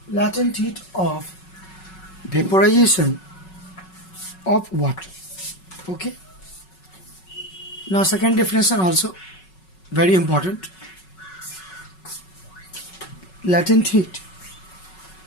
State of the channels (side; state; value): right; late; 5.4 ms